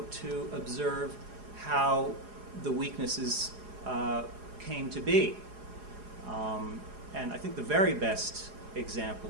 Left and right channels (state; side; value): late; left; 4.8 ms